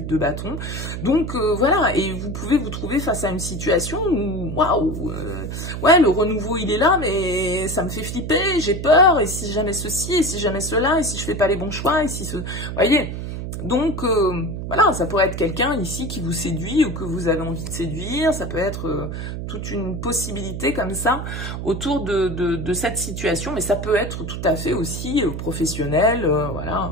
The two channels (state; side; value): noise; right; hum, 6 dB below the sound